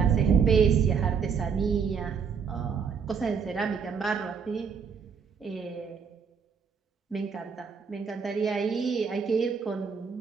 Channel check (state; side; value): quieter; left; 6.3 dB